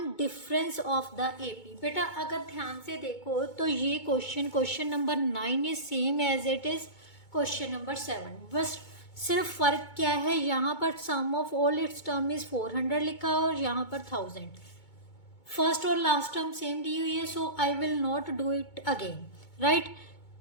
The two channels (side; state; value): right; late; 2.2 ms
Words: difference of the AP. बेटा अगर ध्यान से देखो तो ये question number 9 is same as it is question number 7, बस सिर्फ फर्क क्या है, यहाँ पर sum of all its term is 400 लिखा और यहाँ पर 1000। फर्स्ट और लास्ट टर्म सेम दी हुई है, so I will not do it again, right.